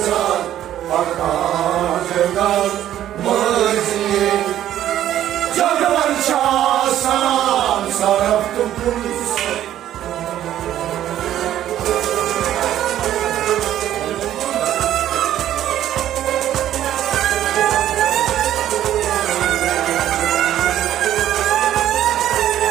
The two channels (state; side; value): quieter; left; 11.9 dB